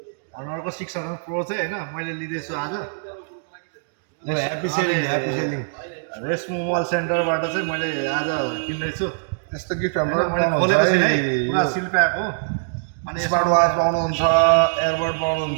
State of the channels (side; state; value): left; silent; digital silence